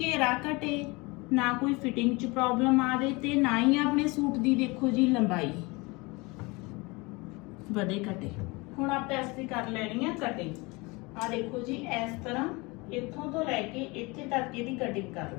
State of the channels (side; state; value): right; quieter; 25.5 dB